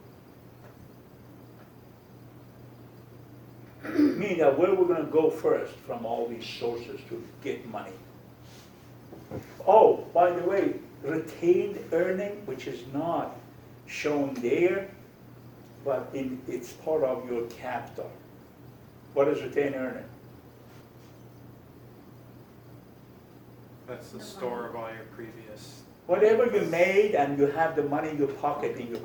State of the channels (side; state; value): both; identical; correlation 1.00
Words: Meaning that where we're going to go first from all these sources to get money. Oh, by the way, retained earning, which is not shown there, but it's part of your capital. What is retained earning? That's the store of all your previous. Whatever you made and you have the money in your pocket in your